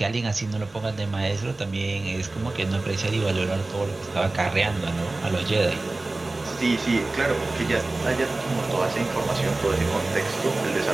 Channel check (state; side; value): quieter; left; 3.1 dB